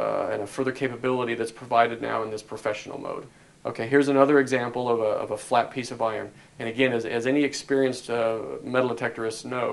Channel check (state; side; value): identical; both; correlation 1.00